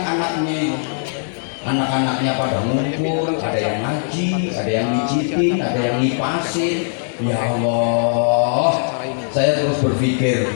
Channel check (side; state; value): right; silent; 62 dB below the other